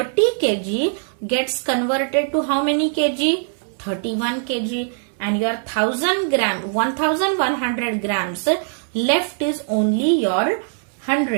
kg gets converted to how many kg? 31 kg. And your 1100 grams left is only your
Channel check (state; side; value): silent; left; digital silence